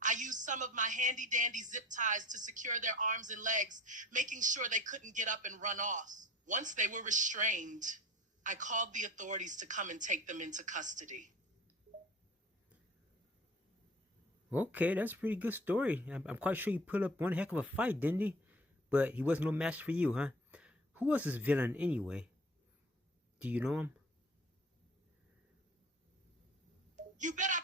I used some of my handy dandy zip ties to secure their arms and legs, making sure they couldn't get up and run off. Once they were restrained, I called the authorities to come and take them into custody. Okay, that's a pretty good story. I'm quite sure you put up one heck of a fight, didn't he? But he wasn't no match for you, huh? Who was this villain anyway? Do you know him? You bet I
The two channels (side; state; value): both; normal; correlation 0.42